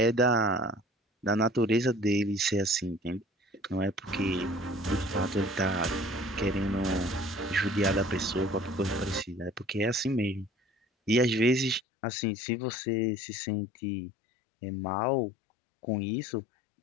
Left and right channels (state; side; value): drops out; right; at 11.8 s